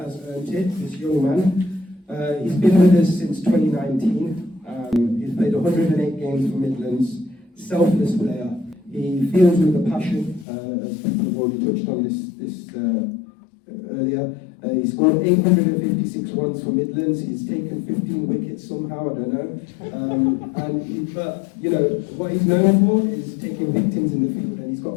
earned it, this young man. He's been with us since 2019. He's played 108 games for Midlands, selfless player. He feels with a passion, as people have already touched on this earlier. He scored 856 runs for Midlands. He's taken 15 wickets somehow, I don't know. But what he's known for is taking victims in the field, and he's got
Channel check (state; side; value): drops out; right; at 10.5 s